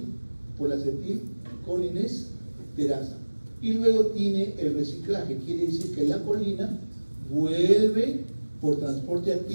Por la acetilcolinesterasa. Y luego tiene el reciclaje, quiere decir que la colina vuelve por transporte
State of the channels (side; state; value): both; inverted; correlation -1.00